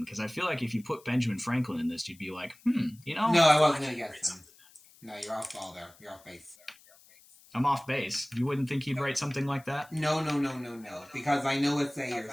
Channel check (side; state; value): left; noise; hiss, 26 dB below the sound